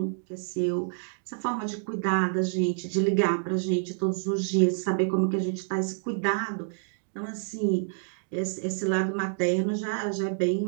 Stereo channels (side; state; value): left; silent; digital silence